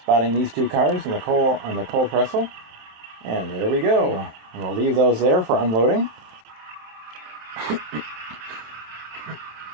Spotting these two cars on the coal trestle, and there we go. And we'll leave those there for unloading.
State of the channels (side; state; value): left; late; 27 ms